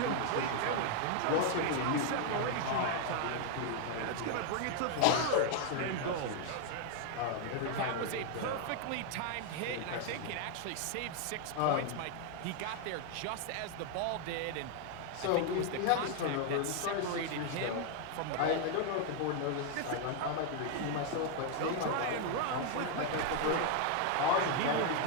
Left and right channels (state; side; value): different; both; correlation 0.00